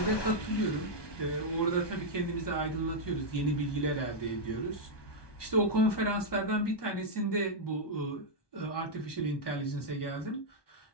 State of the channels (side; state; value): right; late; 1.2 ms